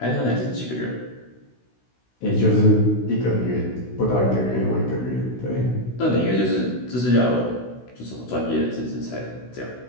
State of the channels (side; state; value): right; late; 16 ms